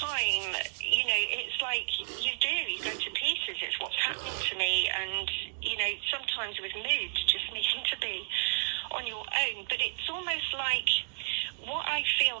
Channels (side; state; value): left; silent; digital silence